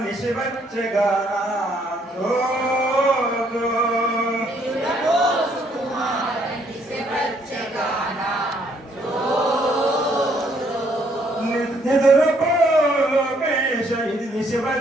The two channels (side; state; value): both; normal; correlation 0.68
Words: నిశివచ్చగానా నిదురపో లోకేశ ఇది